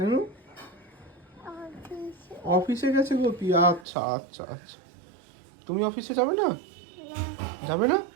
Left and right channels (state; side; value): drops out; left; at 3.9 s